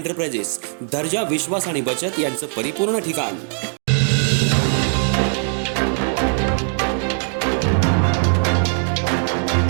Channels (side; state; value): left; silent; 55 dB below the other